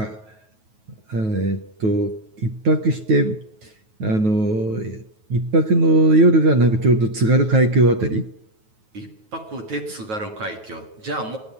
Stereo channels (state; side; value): late; left; 9.3 ms